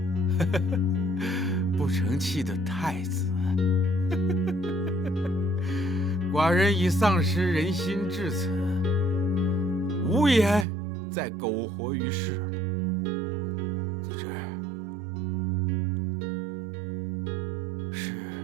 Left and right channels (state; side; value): drops out; left; at 10.7 s